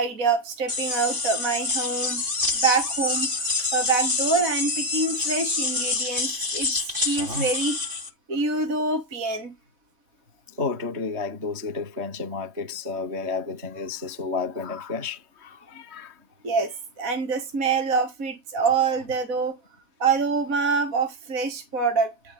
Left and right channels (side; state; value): left; late; 3.5 ms